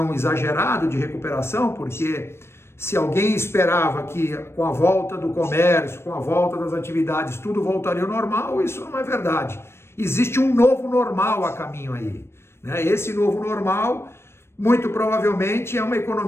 exagerado de recuperação, porque se alguém esperava que com a volta do comércio, com a volta das atividades, tudo voltaria ao normal, isso não é verdade. Existe um novo normal a caminho aí, né? Esse novo normal, muito provavelmente, é uma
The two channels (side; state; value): right; late; 0.12 ms